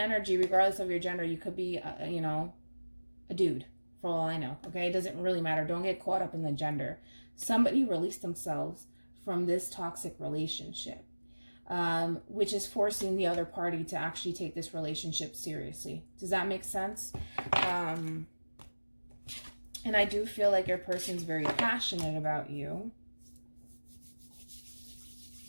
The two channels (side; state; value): both; inverted; correlation -1.00